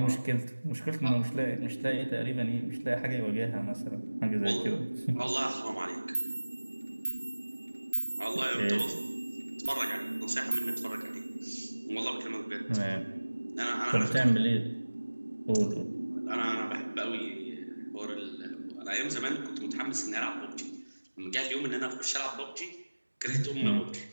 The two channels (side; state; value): both; inverted; correlation -1.00